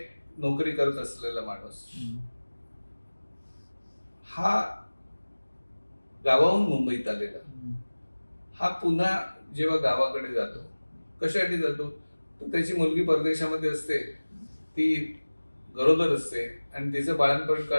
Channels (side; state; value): both; inverted; correlation -1.00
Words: नोकरी करत असलेला माणूस हा गावाहून मुंबईत आलेला, हा पुन्हा जेव्हा गावाकडे जातो, कशासाठी जातो? तर त्याची मुलगी परदेशामध्ये असते, ती गरोदर असते, आणि तिचं बाळंतपण